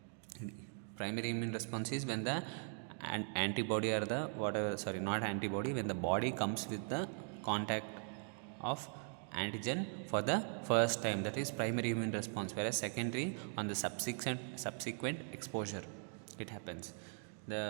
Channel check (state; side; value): silent; left; 51 dB below the other